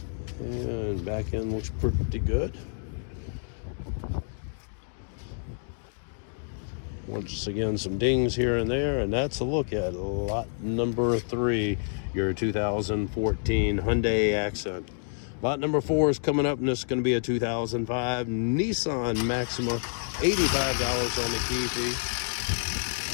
And back end looks pretty good. Once again, some dings here and there, and that's a look at lot number 3, your 2014 Hyundai Accent. Lot number 4 is coming up, and this is going to be a 2005 Nissan Maxima, $85 on the key fee.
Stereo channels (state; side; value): silent; right; digital silence